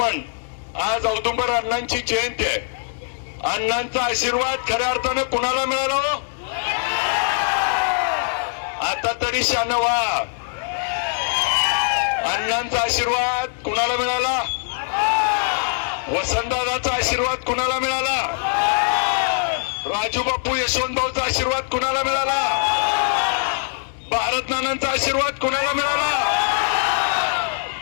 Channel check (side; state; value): right; silent; digital silence